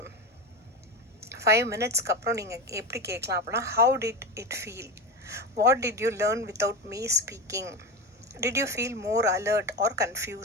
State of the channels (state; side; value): normal; both; correlation 0.21